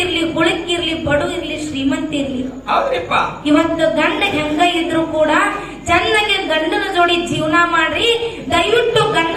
ಹುಳುಕಿರ್ಲಿ, ಬಡು ಇರ್ಲಿ, ಶ್ರೀಮಂತ ಇರ್ಲಿ, ಇವತ್ತು ಗಂಡ ಹೆಂಗ ಇದ್ರು ಕೂಡ ಚೆನ್ನಾಗಿ ಗಂಡನ ಜೋಡಿ ಜೀವನ ಮಾಡ್ರಿ. ದಯವಿಟ್ಟು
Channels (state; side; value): identical; both; correlation 1.00